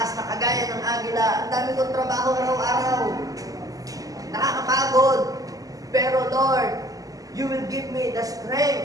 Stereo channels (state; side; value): late; left; 0.17 ms